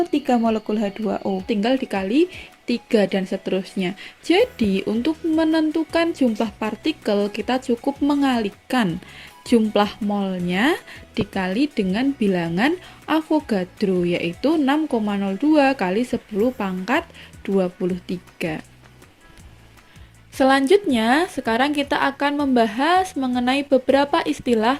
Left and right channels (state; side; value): identical; both; correlation 1.00